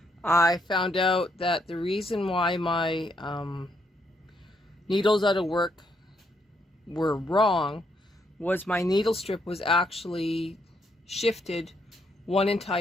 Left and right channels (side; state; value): both; normal; correlation 0.75